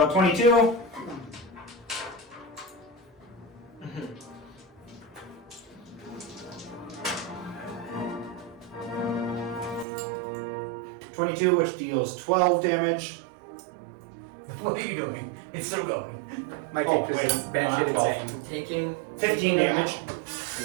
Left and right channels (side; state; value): left; drops out; at 9.9 s